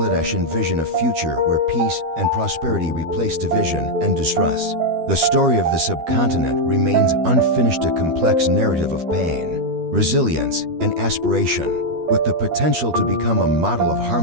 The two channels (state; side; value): late; left; 12 ms